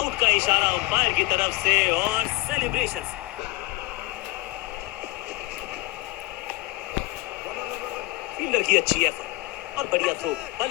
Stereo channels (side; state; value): right; quieter; 21.9 dB